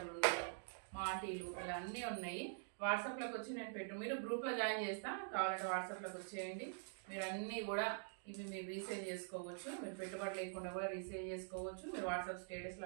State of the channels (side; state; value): left; silent; digital silence